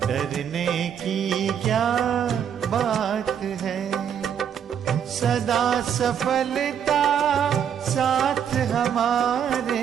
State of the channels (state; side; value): quieter; left; 8.5 dB